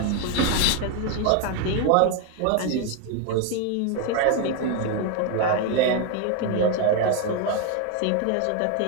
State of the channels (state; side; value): different; both; correlation 0.01